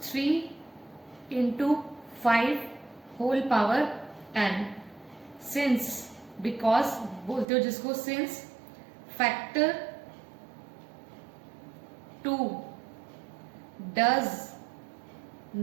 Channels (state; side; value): drops out; left; at 7.5 s